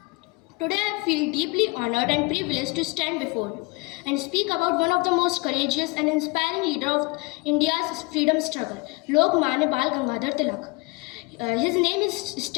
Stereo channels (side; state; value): right; quieter; 26.9 dB